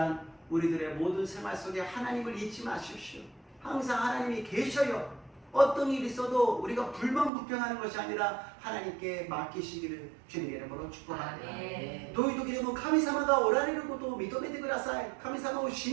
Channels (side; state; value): left; drops out; at 7.3 s